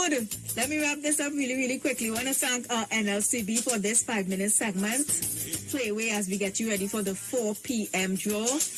Let me wrap this up really quickly. I want to thank our NLCB for this 5-minute segment. Playway as we get you ready for the 4 p.m. draw.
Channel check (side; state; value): both; identical; correlation 1.00